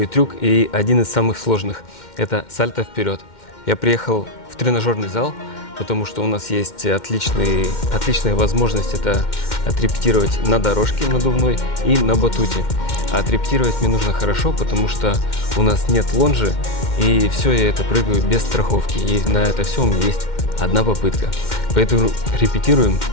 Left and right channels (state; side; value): late; right; 2.1 ms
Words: трюк и один из самых сложных. Это сальто вперед. Я приехал в тренажерный зал, потому что у нас есть отличная возможность это отрепетировать на дорожке надувной и на батуте. А отрепетировать мне нужно хорошо, потому что у нас нет лонжи, и все я это прыгаю без страховки. И на это все у меня есть одна попытка. Поэтому репетируем,